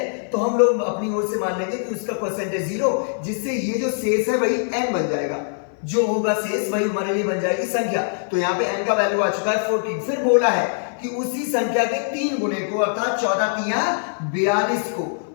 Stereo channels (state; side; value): silent; right; 57 dB below the other